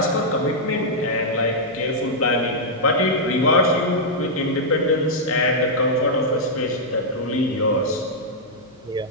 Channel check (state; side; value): noise; left; hum, 28 dB below the sound